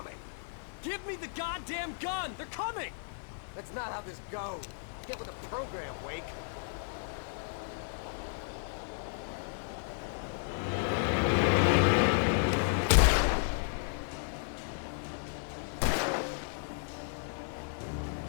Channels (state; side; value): silent; right; digital silence